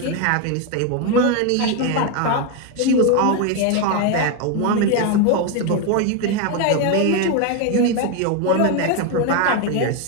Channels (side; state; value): both; different; correlation 0.02